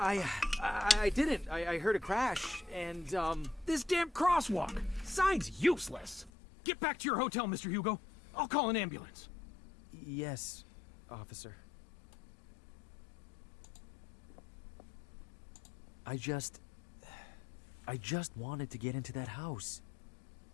didn't. I heard a crash, and, This damn crosswalk! Sign's useless! Get back to your hotel, Mr. Hugo. I'll call an ambulance. Yes, officer. I just wanted to get into that house.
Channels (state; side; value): drops out; right; at 6.3 s